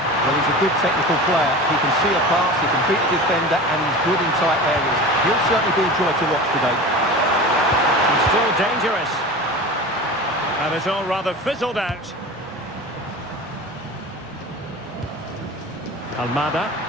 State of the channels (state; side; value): normal; both; correlation 0.33